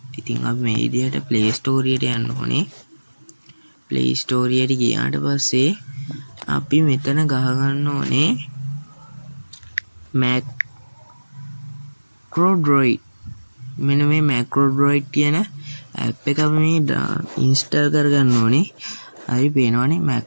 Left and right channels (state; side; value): inverted; both; correlation -1.00